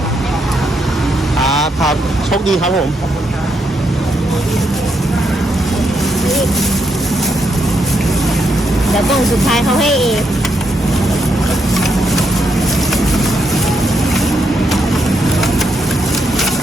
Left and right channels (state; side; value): normal; both; correlation 0.79